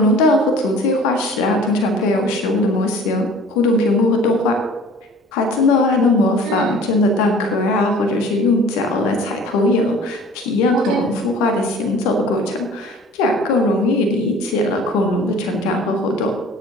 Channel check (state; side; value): normal; both; correlation 0.47